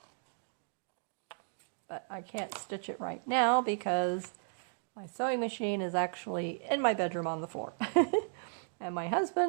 But I can't stitch it right now because my sewing machine is actually in my bedroom on the floor. And my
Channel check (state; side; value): silent; left; 55 dB below the other